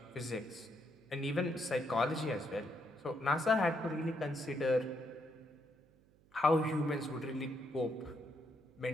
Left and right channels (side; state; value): right; noise; hum, 29 dB below the sound